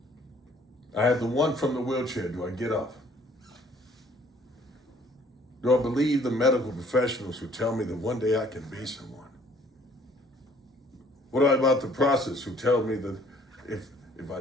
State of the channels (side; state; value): both; normal; correlation 0.59